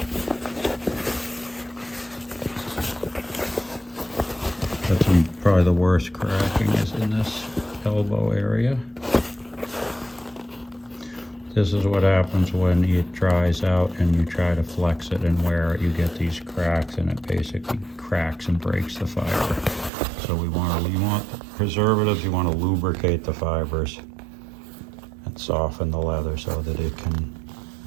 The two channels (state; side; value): drops out; left; at 19.9 s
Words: That's probably the worst cracking is in this elbow area. This is what happens when it dries out and you try to flex it and wear it. You get these cracks and it basically cracks and breaks the fiber. So you want preservatives, you want to lubricate the fibers and soften the leather so that it can